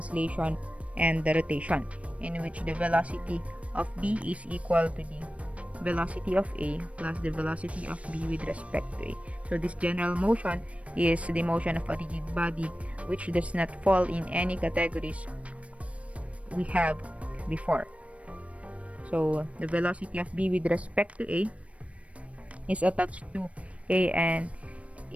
and the rotation, in which the velocity of B is equal to the velocity of A plus the velocity of B with respect to A. So this general motion is the motion of a rigid body which does not fall in any categories we have before. So the velocity of B with respect to A is attached to A and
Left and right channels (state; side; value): late; left; 0.064 ms